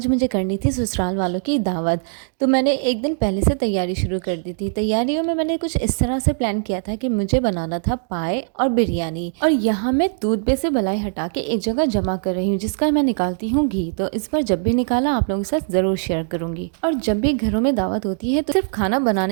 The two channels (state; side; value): silent; left; digital silence